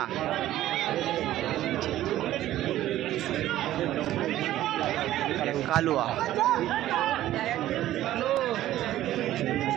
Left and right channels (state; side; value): quieter; left; 13.8 dB